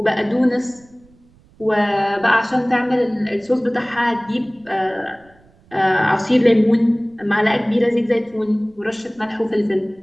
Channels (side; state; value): right; noise; rumble, 30 dB below the sound